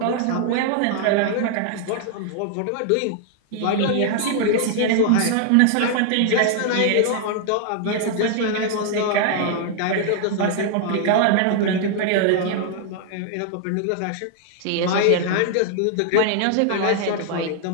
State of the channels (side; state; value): both; different; correlation 0.00